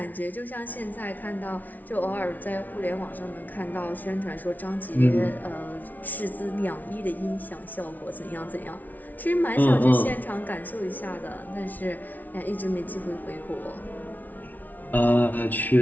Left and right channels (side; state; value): right; late; 0.079 ms